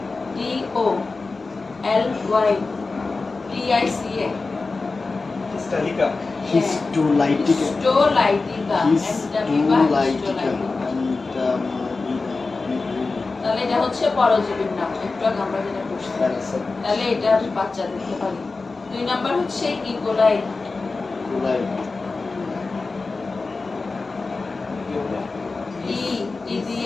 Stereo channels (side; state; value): right; quieter; 3.8 dB